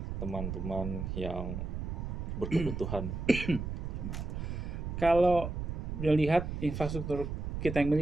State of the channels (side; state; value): right; noise; rumble, 4 dB below the sound